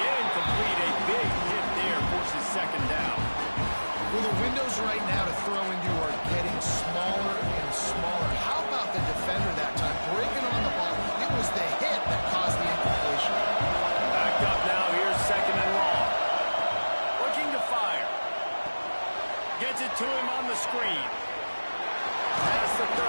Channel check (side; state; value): both; inverted; correlation -1.00